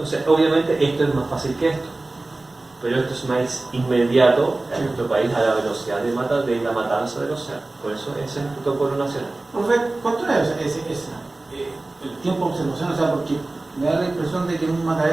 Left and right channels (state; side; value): quieter; left; 3.0 dB